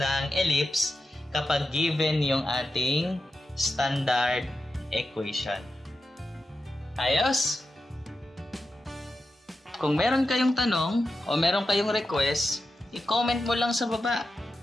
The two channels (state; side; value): normal; both; correlation 0.90